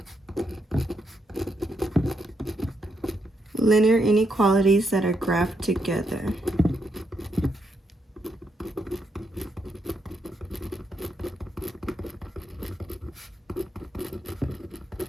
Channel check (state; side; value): normal; both; correlation 0.79